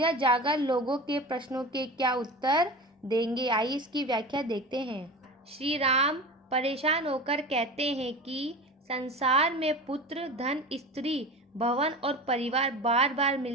जाकर लोगों के प्रश्नों के क्या उत्तर देंगे। आइए इसकी व्याख्या देखते हैं। श्री राम परेशान होकर कहते हैं कि संसार में पुत्र, धन, स्त्री, भवन और परिवार बार बार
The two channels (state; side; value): normal; both; correlation 0.31